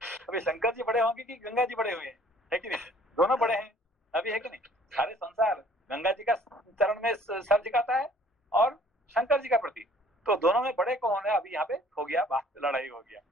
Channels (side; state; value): both; normal; correlation 0.55